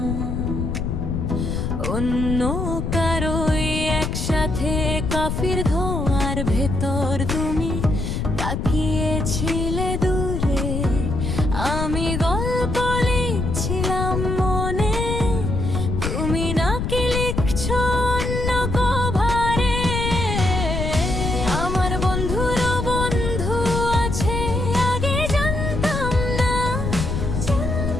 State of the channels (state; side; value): noise; left; rumble, 2 dB below the sound